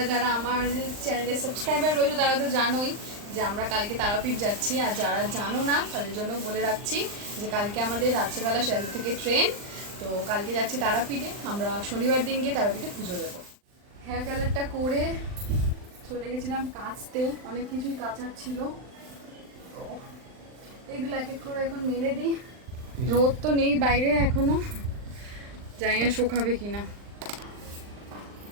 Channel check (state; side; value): late; left; 39 ms